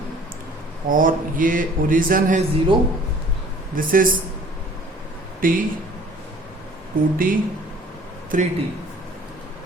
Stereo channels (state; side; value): normal; both; correlation 0.51